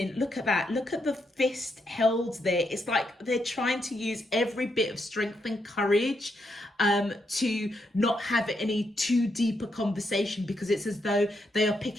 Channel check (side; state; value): both; normal; correlation 0.80